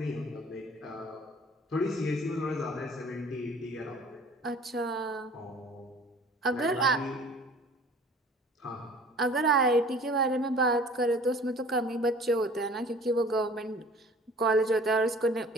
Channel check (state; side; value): normal; both; correlation 0.48